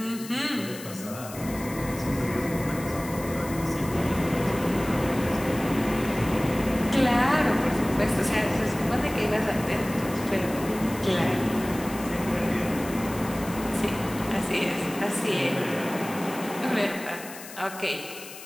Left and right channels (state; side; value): noise; left; hiss, 14 dB below the sound